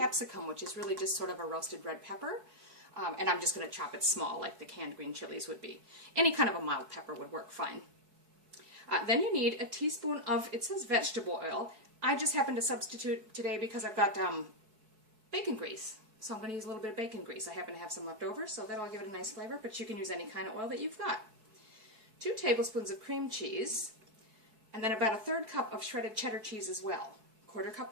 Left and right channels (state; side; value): late; left; 4.6 ms